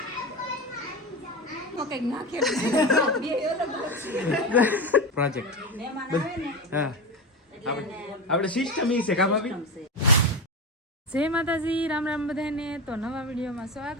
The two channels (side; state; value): both; normal; correlation 0.21